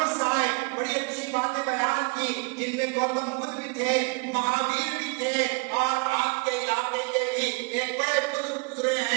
آئے، بڑی اچھی باتیں بیان کی، جن میں گوتم بدھ بھی تھے، مہاویر بھی تھے، اور آپ کے علاقے کے بھی ایک بڑے بزرگ گزرے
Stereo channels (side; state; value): left; quieter; 30.8 dB